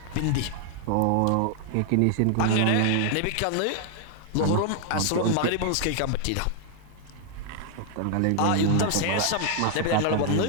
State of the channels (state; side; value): different; both; correlation 0.00